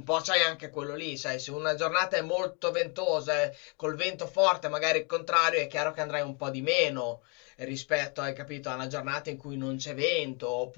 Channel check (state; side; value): quieter; right; 33.7 dB